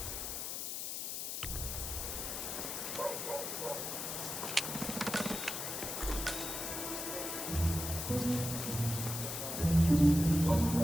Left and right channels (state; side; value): noise; left; hiss, 4 dB below the sound